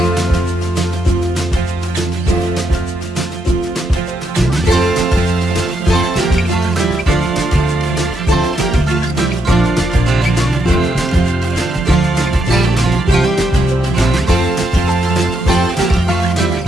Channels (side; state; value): both; normal; correlation 0.79